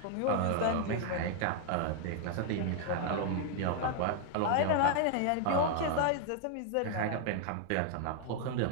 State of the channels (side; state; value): both; different; correlation 0.00